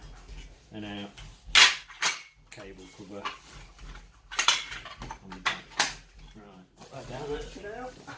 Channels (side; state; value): both; identical; correlation 1.00